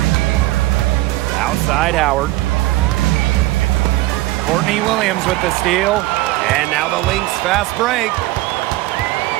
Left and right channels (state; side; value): quieter; left; 18.3 dB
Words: Outside Howard. Courtney Williams with the steal. And now the Lynx fast break.